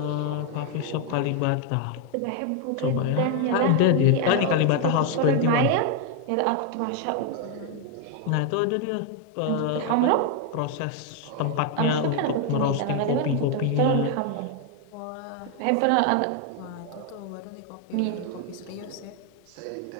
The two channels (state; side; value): different; both; correlation 0.01